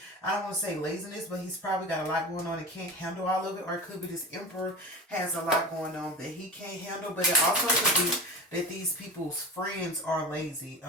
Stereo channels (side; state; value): both; normal; correlation 0.31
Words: I don't want to say laziness, but he's probably got a lot going on and can't handle all of it, or it could be this Emperor has a lot going on that he can't handle. But it also could be that these people's friends are lazy.